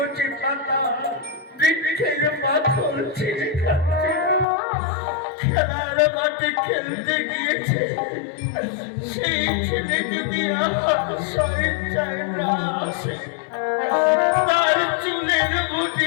পাতা বৃক্ষের পাথর ছিঁড়ে খাচ্ছে, খেলার মাঠে খেলতে গিয়েছে। সেই ছেলে যদি আমার স্বেচ্ছায় না আসে, তার চুলের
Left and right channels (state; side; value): drops out; right; at 4.5 s